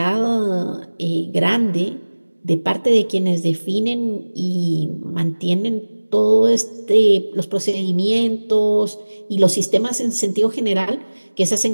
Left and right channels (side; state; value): both; inverted; correlation -1.00